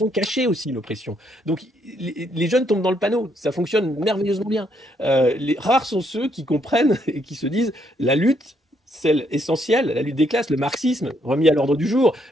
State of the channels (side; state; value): both; normal; correlation 0.73